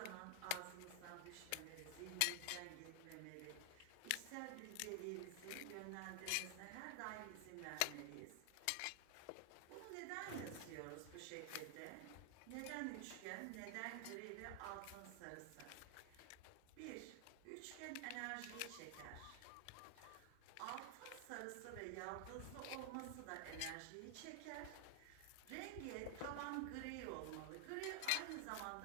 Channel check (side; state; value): both; different; correlation 0.00